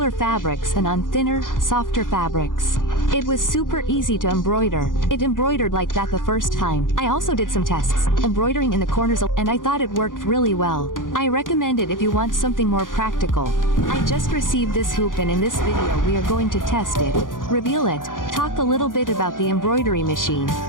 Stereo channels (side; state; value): right; late; 0.89 ms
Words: fabrics and on thinner, softer fabrics. It was super easy to embroider. It embroidered like that the first time. I also did some tests, embroidering in the corners, and I thought it worked really well. I recommend it if you want something more practical. I just received this hoop, and in this video we are going to test it, reveal it, talk a little bit about the embroidery machine,